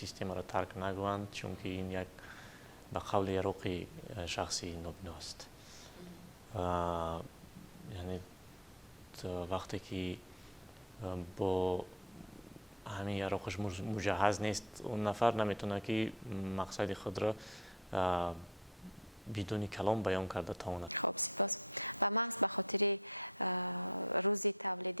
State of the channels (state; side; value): normal; both; correlation 0.38